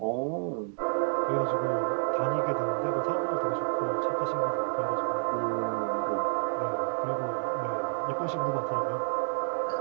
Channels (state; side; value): silent; left; digital silence